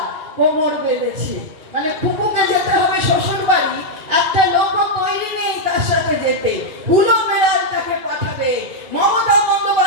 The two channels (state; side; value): late; left; 2.8 ms